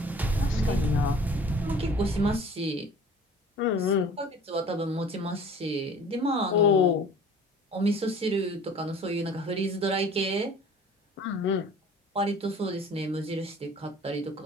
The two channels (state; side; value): normal; both; correlation 0.47